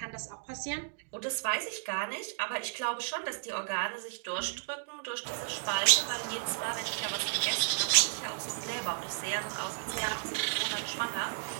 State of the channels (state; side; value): silent; left; digital silence